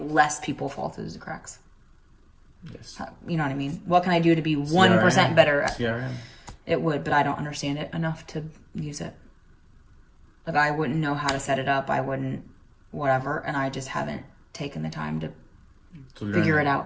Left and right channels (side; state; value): both; identical; correlation 1.00